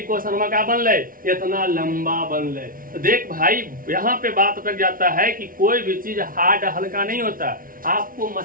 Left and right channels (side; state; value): left; late; 0.41 ms